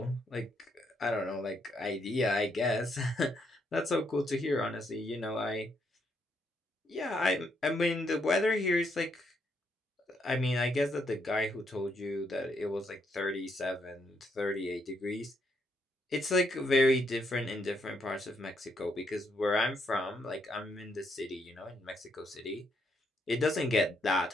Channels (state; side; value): normal; both; correlation 0.75